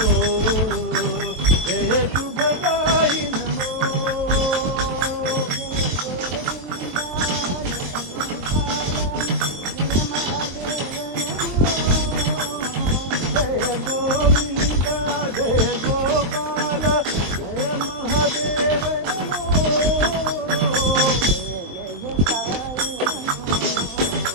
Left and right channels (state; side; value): late; left; 23 ms